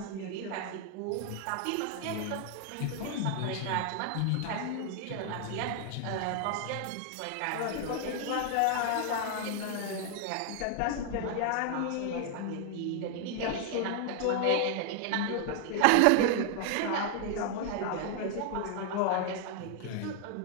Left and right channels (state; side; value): different; both; correlation 0.00